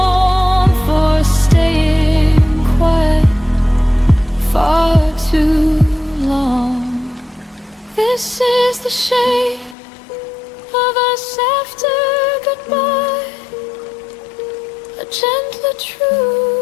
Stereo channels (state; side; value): drops out; right; at 9.8 s